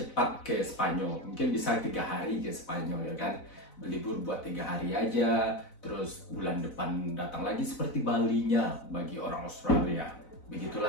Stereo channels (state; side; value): late; right; 4.0 ms